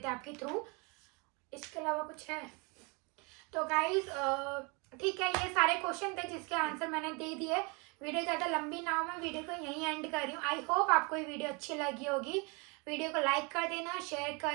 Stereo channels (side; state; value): left; quieter; 30.6 dB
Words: आपके थ्रू, इसके अलावा कुछ है तो गाइज ठीक है, ये सारे क्वेश्चन थे जिसके आंसर मैंने दे दिए। वीडियो ज़्यादा लंबी ना हो, मैं वीडियो को यहीं एंड कर रही हूँ। आई होप आपको ये वीडियो अच्छी लगी होगी। वीडियो को लाइक कर देना, शेयर